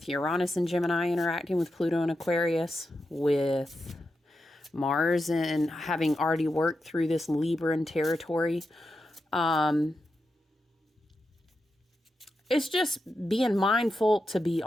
Uranus and Gemini interacting with Pluto and Aquarius, with Mars and having already worked through this Libran territory. It's just being mindful to be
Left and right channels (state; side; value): normal; both; correlation 0.88